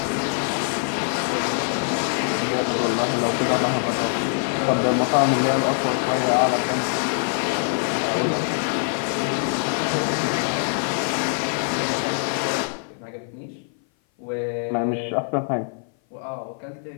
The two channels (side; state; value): right; silent; 57 dB below the other